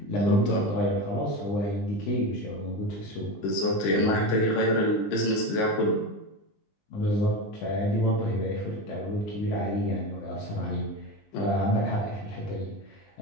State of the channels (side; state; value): right; late; 20 ms